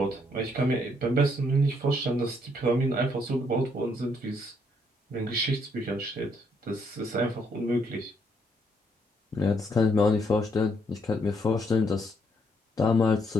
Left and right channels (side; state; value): both; normal; correlation 0.71